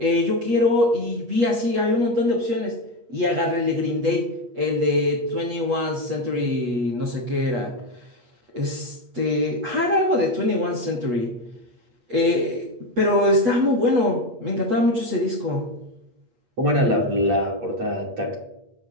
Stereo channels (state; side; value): late; left; 8.2 ms